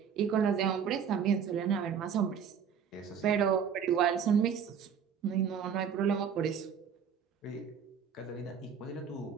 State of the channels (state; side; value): quieter; left; 7.4 dB